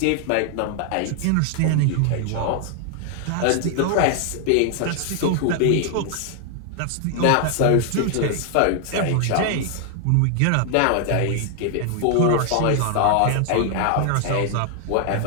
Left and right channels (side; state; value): both; different; correlation 0.00